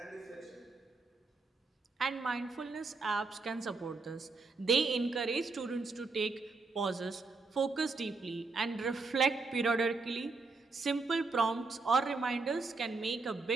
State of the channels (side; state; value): left; quieter; 4.0 dB